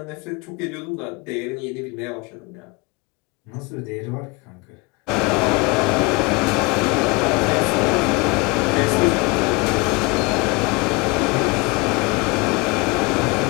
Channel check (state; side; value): quieter; right; 26.5 dB